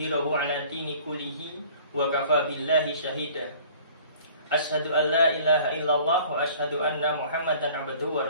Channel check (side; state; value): both; inverted; correlation -0.50